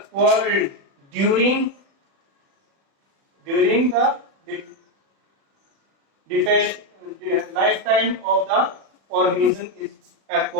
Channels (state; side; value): late; left; 36 ms